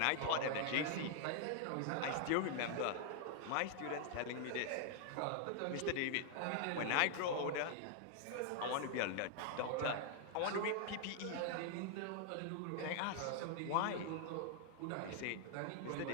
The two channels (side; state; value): both; different; correlation 0.00